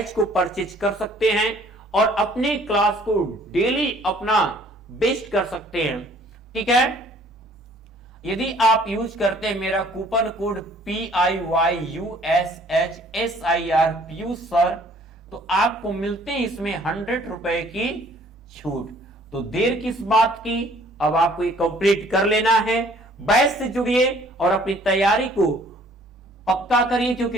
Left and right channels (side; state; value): both; normal; correlation 0.57